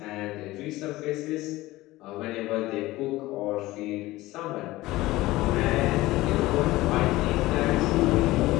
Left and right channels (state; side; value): quieter; right; 18.1 dB